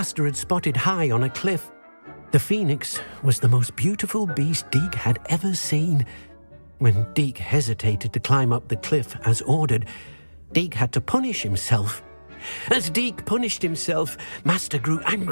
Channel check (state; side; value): inverted; both; correlation -1.00